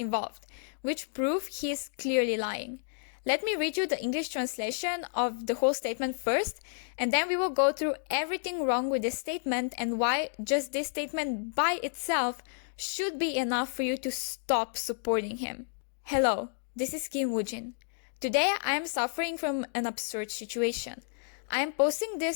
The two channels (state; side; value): silent; right; digital silence